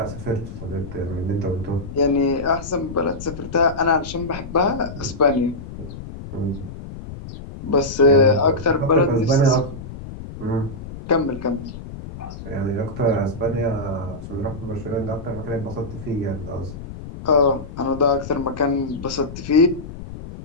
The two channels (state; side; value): noise; left; rumble, 11 dB below the sound